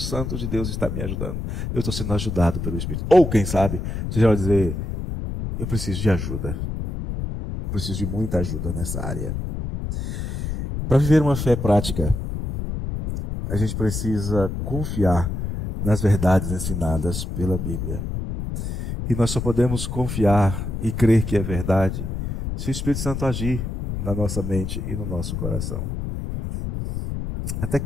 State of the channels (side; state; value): left; noise; rumble, 4 dB below the sound